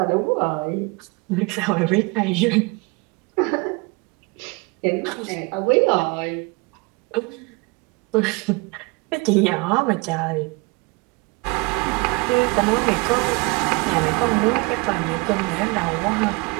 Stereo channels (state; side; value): quieter; left; 27.3 dB